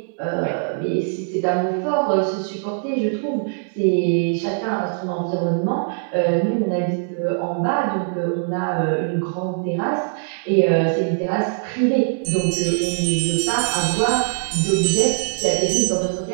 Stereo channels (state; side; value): silent; left; 64 dB below the other